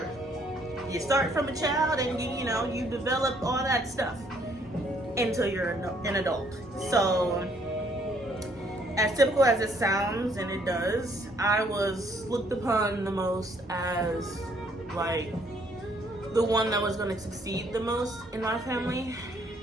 You start from a child and you know, you develop all that stuff until you're an adult. So as typical as it sounds, and it does, I was looked upon the most as like the one that was going to succeed the most in my family.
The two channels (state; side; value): normal; both; correlation 0.66